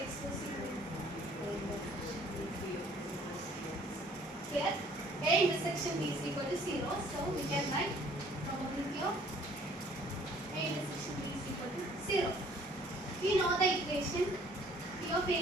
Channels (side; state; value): both; normal; correlation 0.56